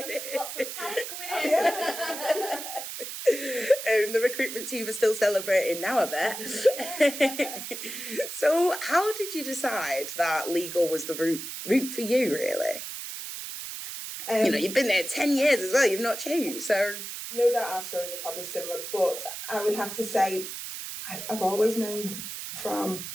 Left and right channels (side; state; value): right; noise; hiss, 8 dB below the sound